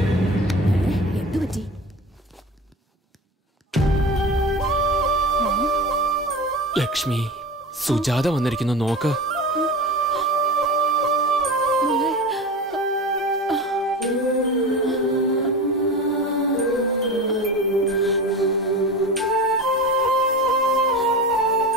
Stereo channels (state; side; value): normal; both; correlation 0.30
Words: എന്തു പറ്റി? ലക്ഷ്മി, സുജാത വന്നിരിക്കുന്നു, നോക്ക്.